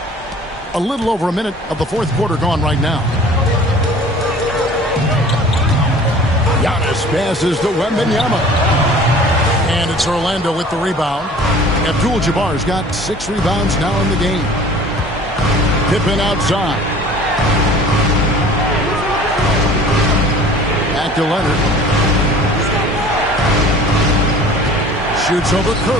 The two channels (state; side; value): normal; both; correlation 0.46